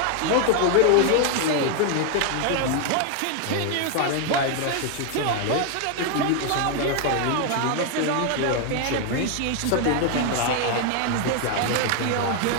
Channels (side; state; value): both; different; correlation 0.00